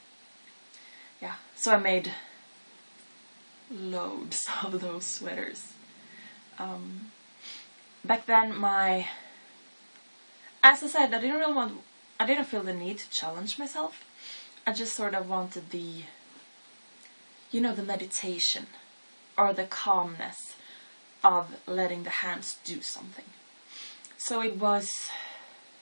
yeah. So I made loads of those sweaters. Back then, as I said, I didn't feel the need to challenge myself. I just sort of wanted the meditation or the calmness of letting the hands do something. So it was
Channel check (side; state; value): both; inverted; correlation -1.00